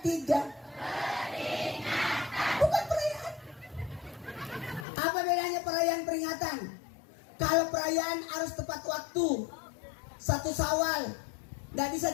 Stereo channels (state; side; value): drops out; right; at 4.9 s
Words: 3. Peringatan. Bukan perayaan. Apa bedanya perayaan peringatan? Kalau perayaan harus tepat waktu. 1 Syawal, nggak bisa